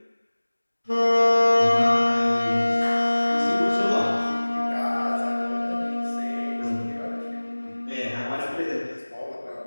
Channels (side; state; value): both; inverted; correlation -1.00